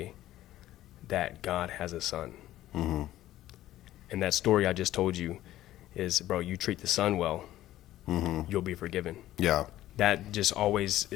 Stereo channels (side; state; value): right; quieter; 14.3 dB